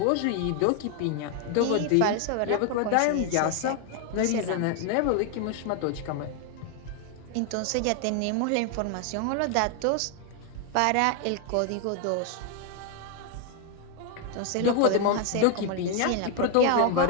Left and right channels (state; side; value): different; both; correlation 0.01